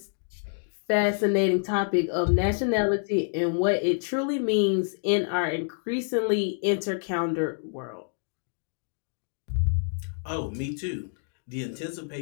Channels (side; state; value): right; silent; digital silence